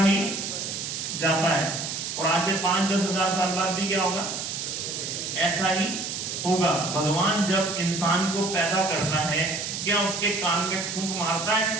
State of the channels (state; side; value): noise; right; hiss, 5 dB below the sound